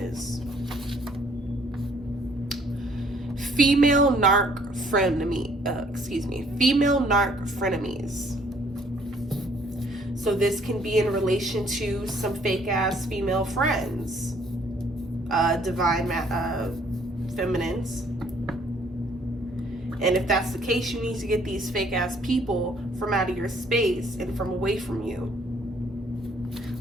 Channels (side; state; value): both; normal; correlation 0.62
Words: Female narc frenemies. So this can be in relation to some fake ass female friends, divine feminines. And if that's the case, you need to get these fake ass people from out of your space and from away from you.